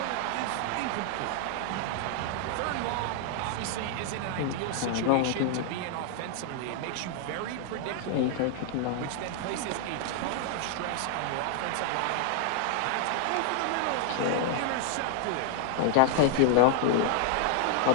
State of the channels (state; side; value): different; both; correlation 0.00